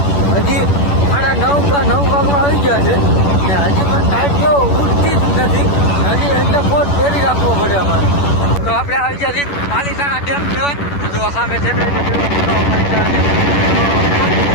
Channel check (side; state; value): right; late; 11 ms